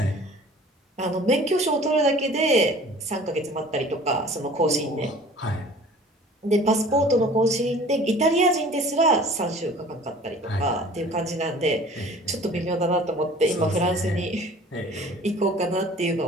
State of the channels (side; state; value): both; normal; correlation 0.47